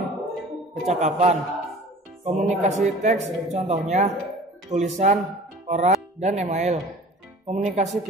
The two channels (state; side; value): normal; both; correlation 0.44